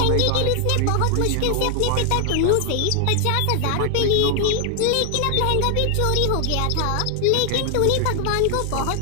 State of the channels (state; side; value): different; both; correlation 0.00